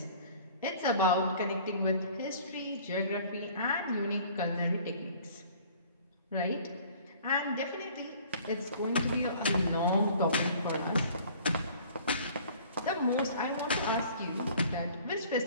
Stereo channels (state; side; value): inverted; both; correlation -0.51